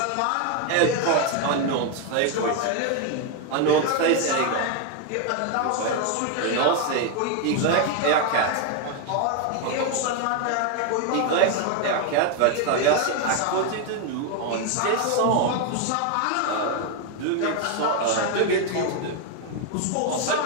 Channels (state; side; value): different; both; correlation 0.01